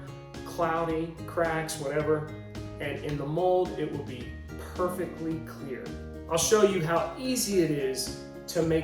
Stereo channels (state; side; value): identical; both; correlation 1.00